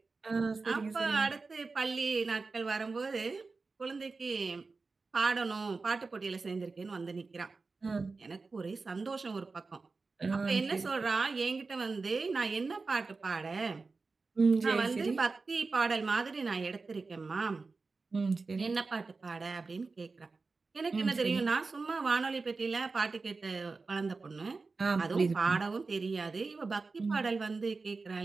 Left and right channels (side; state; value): left; quieter; 4.1 dB